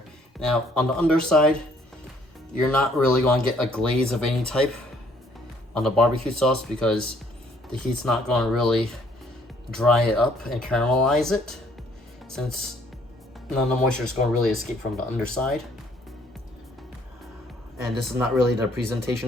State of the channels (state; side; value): normal; both; correlation 0.63